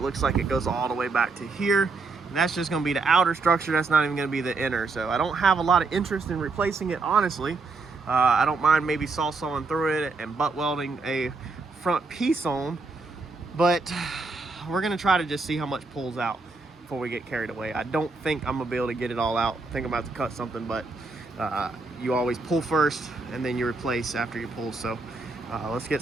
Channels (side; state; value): left; quieter; 3.9 dB